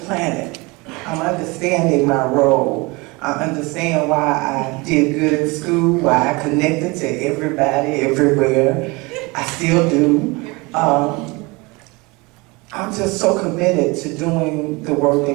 planet, I'm understanding my role. I understand why I did good in school, why I connected to everybody, everywhere. I still do. I'm just so committed to doing the work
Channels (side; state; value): left; quieter; 25.3 dB